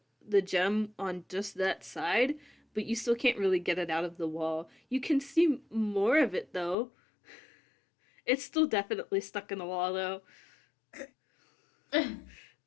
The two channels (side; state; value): right; drops out; at 6.8 s